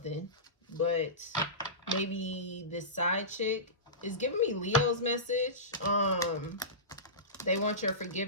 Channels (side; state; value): both; normal; correlation -0.20